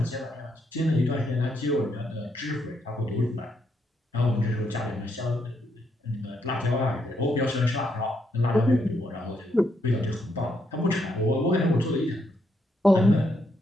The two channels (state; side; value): normal; both; correlation 0.76